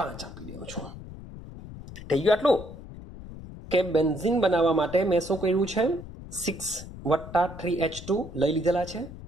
આપી દઉં છું થઈ ગયું આટલું કે બેન્ઝીન બનાવવા માટે મેં શું કર્યું છે 6 + 3H2 લઈ લીધેલા છે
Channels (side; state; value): left; noise; rumble, 14 dB below the sound